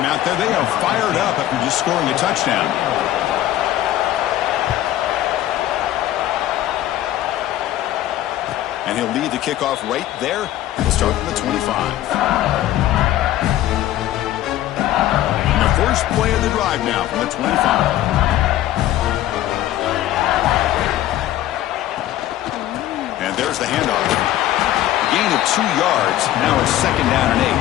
out there, they are fired up after just scoring a touchdown. And he'll lead the kickoff right there. He'll start from the 25. And the first play of the drive now from the 25. And there's the handoff. A gain of 2 yards. Now it's second down and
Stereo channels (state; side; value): quieter; right; 13.6 dB